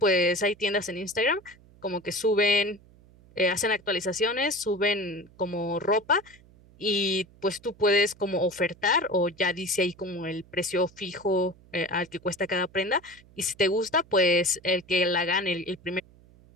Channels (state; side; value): noise; right; hum, 26 dB below the sound